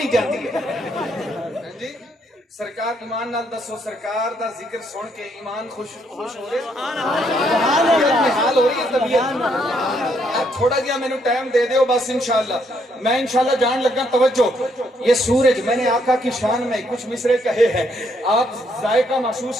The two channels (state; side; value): normal; both; correlation 0.72